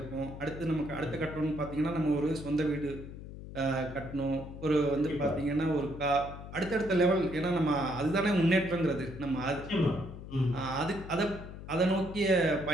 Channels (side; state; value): left; noise; hum, 12 dB below the sound